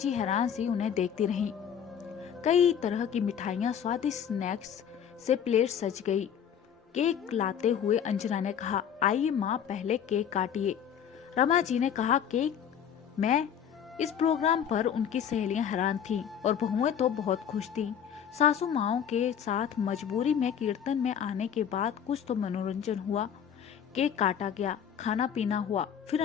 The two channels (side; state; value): right; quieter; 8.5 dB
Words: हैरान सी उन्हें देखती रही। कई तरह की मिठाइयाँ, स्वादिष्ट स्नैक्स से प्लेट सज गई। केक लाते हुए अंजना ने कहा, आइए माँ पहले केक काटिए। रमा जी ने कहा, केक? मैं? इस प्रोग्राम पर उनकी सहेलियां हैरान थीं और बहुएं तो बहुत खुश थीं। सासू माओं के साथ मजबूरी में कीर्तन में आने के बाद कुछ तो मनोरंजन हुआ। केक काटा गया, खाना पीना हुआ। फिर